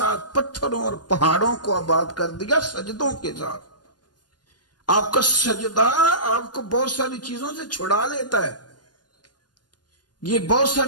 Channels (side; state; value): right; late; 0.69 ms